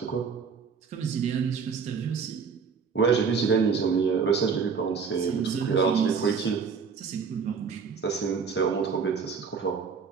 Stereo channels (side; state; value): left; quieter; 5.8 dB